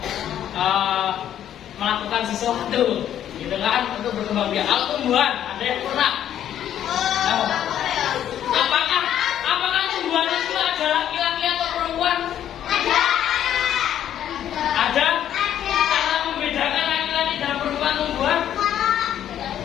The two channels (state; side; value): quieter; right; 10.7 dB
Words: melakukan sesuatu gitu kan untuk berkembang biak. Kalau tumbuhan ada yang pernah? Apakah tumbuhan itu ada laki-laki atau perempuan? Ada? Cara membedakan laki-laki dan perempuan tumbuhan?